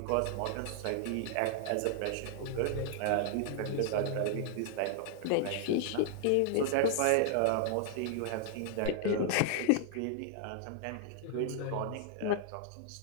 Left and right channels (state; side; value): different; both; correlation -0.01